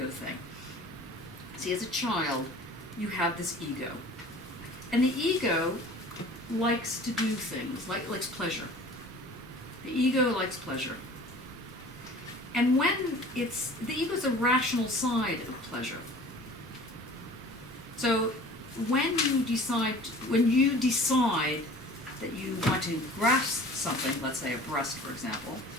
thing. See, as a child, you have this ego. And the ego likes to do things, likes pleasure. The ego likes pleasure. And when the ego is a rational side of pleasure. So when you decide that you want to grasp something, let's say a breast, for example.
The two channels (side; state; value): both; normal; correlation 0.45